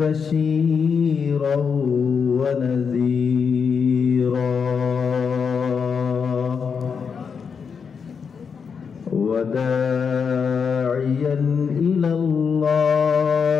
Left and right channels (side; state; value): right; quieter; 6.2 dB